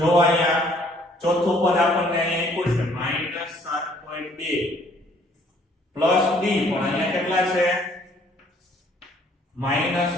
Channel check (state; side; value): normal; both; correlation 0.61